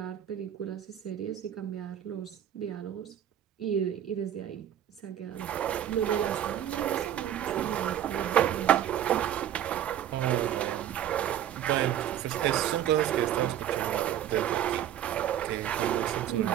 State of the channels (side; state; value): left; quieter; 10.8 dB